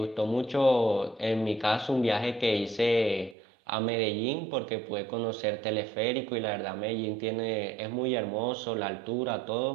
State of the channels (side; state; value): left; drops out; at 3.4 s